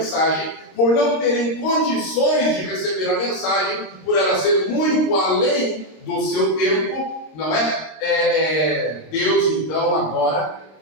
por não terem condições de receber a mensagem, por ela ser muito além do seu tempo, não é? Deus, então, agora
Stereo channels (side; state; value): right; late; 26 ms